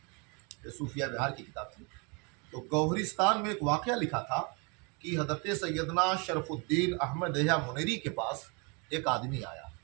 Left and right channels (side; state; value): left; quieter; 32.0 dB